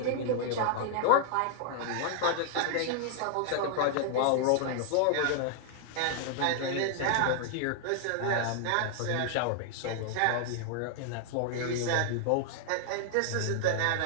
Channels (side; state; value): both; different; correlation 0.00